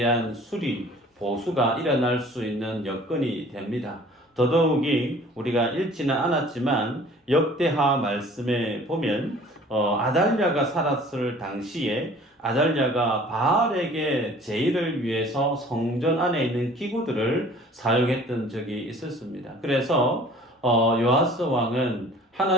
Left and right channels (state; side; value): normal; both; correlation 0.49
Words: 수리, 보수가 일어날 수 있는 여건이 됩니다. 더더욱이 우리가 읽지는 않았지만 역대하 말씀에 보면 아달랴가 살았을 당시에 아달랴가 바알에게 제의를 위해서 성전 안에 있는 기구들을 사용했던 적이 있었습니다. 그래서 요아스 왕은